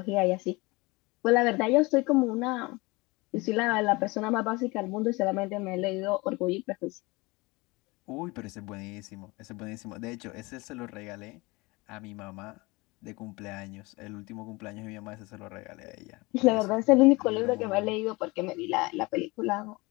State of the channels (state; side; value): quieter; right; 24.1 dB